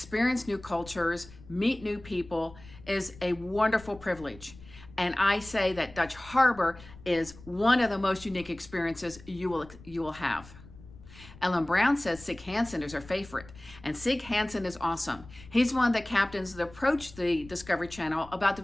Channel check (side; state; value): left; noise; rumble, 19 dB below the sound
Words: new cultures, meet new people is a wonderful privilege. And I say that Dutch Harbor is one of the most unique experiences you will have. Ellen Brown says Sig Hansen is her favorite, and Sig Hansen is awesome. He's one of the captains that approached the Discovery Channel about